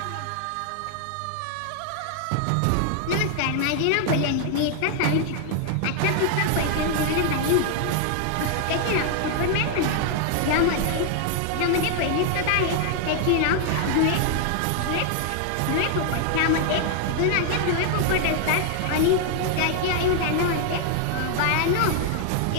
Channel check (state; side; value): different; both; correlation 0.00